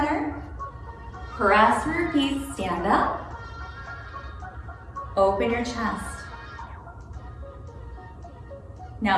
Press through your feet. Stand up. Open your chest.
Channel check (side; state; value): both; identical; correlation 1.00